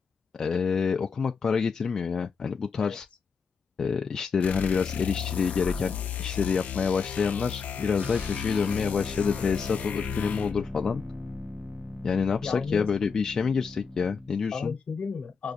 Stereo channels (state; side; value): quieter; right; 5.6 dB